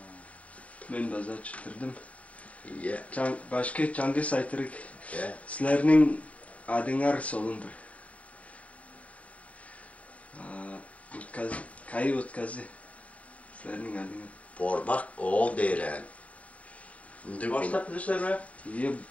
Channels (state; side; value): late; right; 0.067 ms